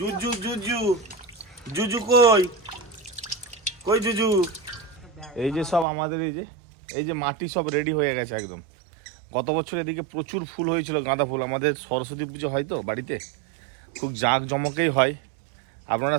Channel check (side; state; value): left; drops out; at 5.9 s